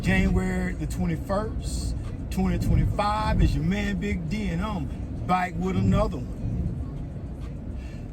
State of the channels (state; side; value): identical; both; correlation 1.00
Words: January the 21st, 2025. It's your man Big D, and I'm back with another one.